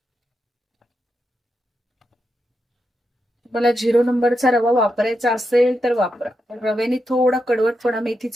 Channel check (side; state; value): both; normal; correlation 0.86